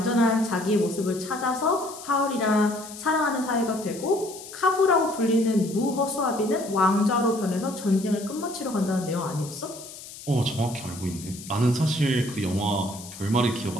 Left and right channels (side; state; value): left; noise; hiss, 15 dB below the sound